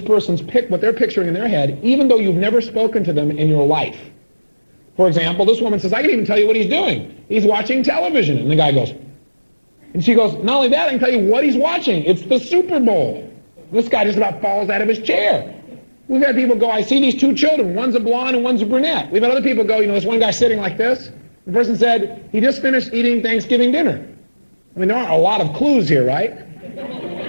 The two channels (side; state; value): both; inverted; correlation -1.00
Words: person's what they're picturing in their head, even though you've never spoken to them in your life. For example, this woman says, I can even tell you what he's doing. He's watching television. And the guy goes, and she goes, not only that, I can tell you what he's watching. It's the Super Bowl. This guy just about falls out of his chair. We've had people go, I see these two children. One's a blonde and one's a brunette. We've had other people go, there's one guy sitting like this. The person said, he just finished eating Thanksgiving dinner. I mean, there aren't a lot of clues here, right?